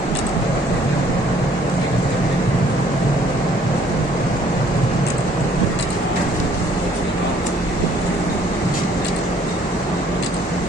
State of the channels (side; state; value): both; normal; correlation 0.61